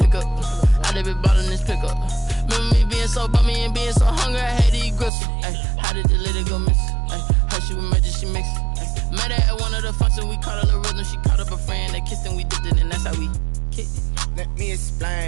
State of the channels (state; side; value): drops out; left; at 5.1 s